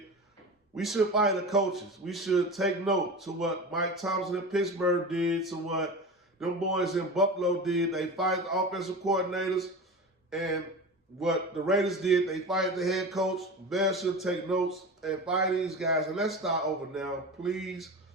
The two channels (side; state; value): both; normal; correlation 0.29